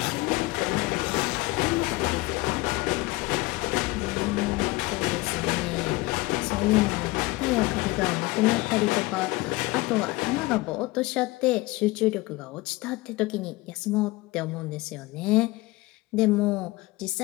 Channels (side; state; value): right; quieter; 21.1 dB